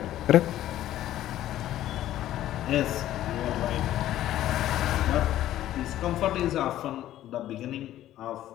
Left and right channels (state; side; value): quieter; right; 13.2 dB